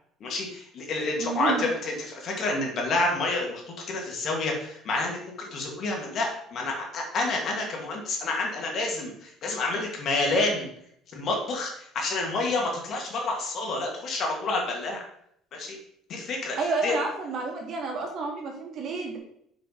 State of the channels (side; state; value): both; normal; correlation 0.54